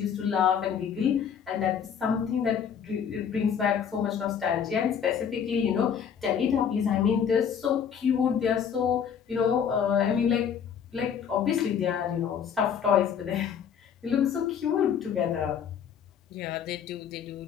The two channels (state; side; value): quieter; right; 7.8 dB